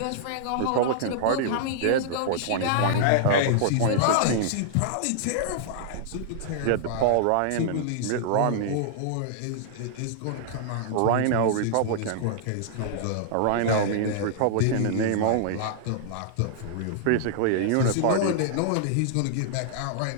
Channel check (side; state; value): both; different; correlation -0.01